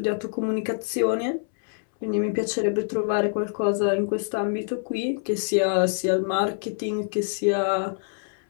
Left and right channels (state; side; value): silent; right; 61 dB below the other